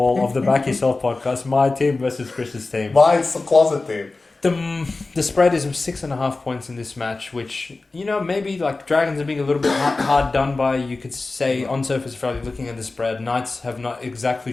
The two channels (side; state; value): right; quieter; 3.5 dB